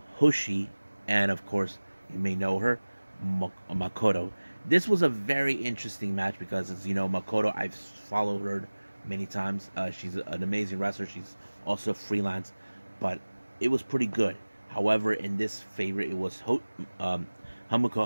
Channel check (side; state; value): both; inverted; correlation -1.00